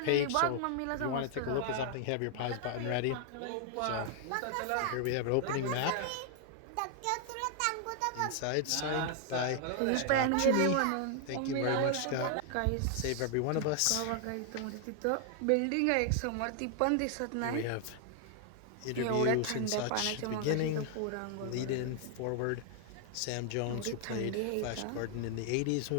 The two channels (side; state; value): both; different; correlation 0.00